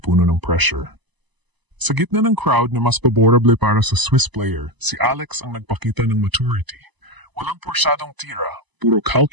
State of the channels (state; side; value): late; left; 1.0 ms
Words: ng pressure. Sa gitna ng crowd na mas paborable para sa Swiss player, si Alex ang nagpakita ng maturity. Walang porsyadong tira, puro